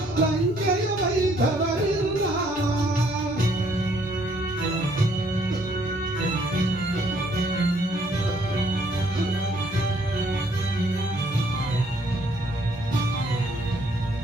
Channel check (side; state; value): both; normal; correlation 0.65